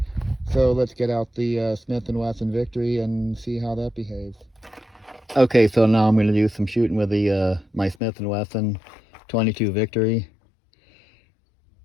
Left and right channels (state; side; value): drops out; right; at 8.0 s